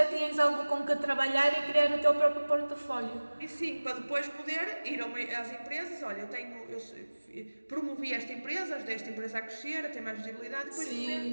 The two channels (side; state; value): both; inverted; correlation -1.00